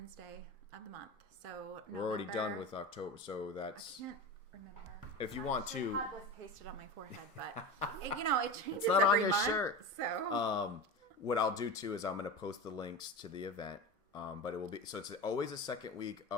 of the month. So we're already done with October, so that's, I can't remember. If you want to, it was pasted on my forehead, but it changes. It's not on your month, shirt. So what I'll do too is I'm going to post the links to the event. But it will be, so it's always the second week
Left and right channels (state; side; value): normal; both; correlation 0.27